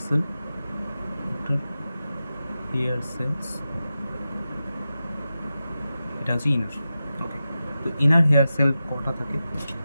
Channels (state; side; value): inverted; both; correlation -0.92